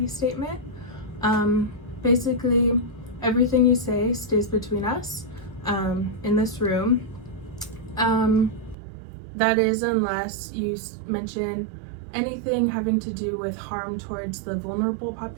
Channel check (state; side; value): drops out; left; at 8.8 s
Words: statement. Basically, everything you say stays between us in this room. That is unless you mention anything having to do with harm towards the vulnerable